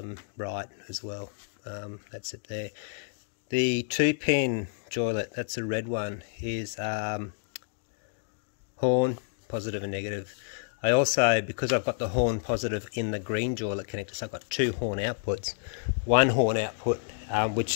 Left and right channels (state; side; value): silent; right; digital silence